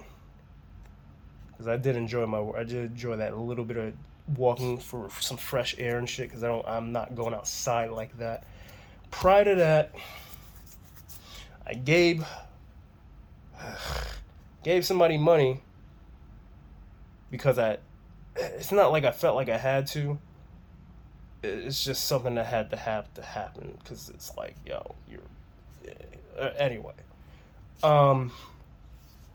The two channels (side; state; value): both; identical; correlation 1.00